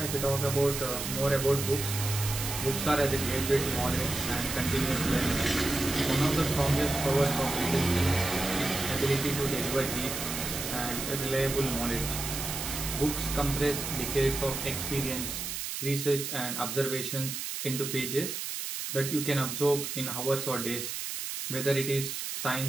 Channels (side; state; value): right; noise; hiss, 4 dB below the sound